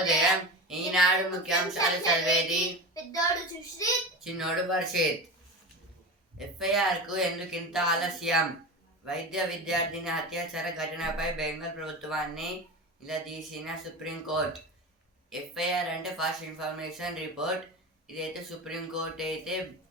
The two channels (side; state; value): both; normal; correlation 0.28